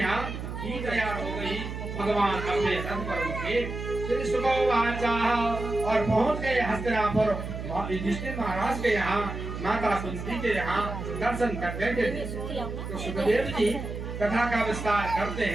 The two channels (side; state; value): right; noise; hum, 7 dB below the sound